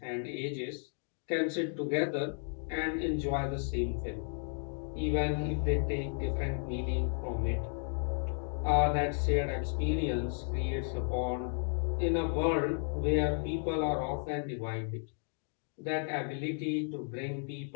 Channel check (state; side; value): silent; right; 55 dB below the other